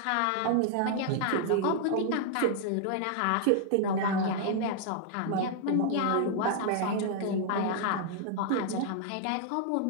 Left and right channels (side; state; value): both; different; correlation 0.00